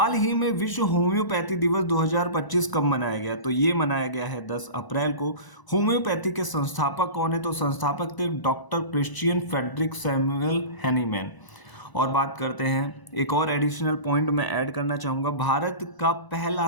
ही में विश्व होम्योपैथी दिवस 2025 कब मनाया गया? तो ये मनाया गया है 10 अप्रैल को। होम्योपैथी के संस्थापक कौन है? तो संस्थापक थे doctor Christian Friedrich Samuel Hahnemann. और बात करते हैं, एक और एडिशनल पॉइंट मैं ऐड करना चाहूँगा। भारत का पहला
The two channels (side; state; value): right; late; 1.0 ms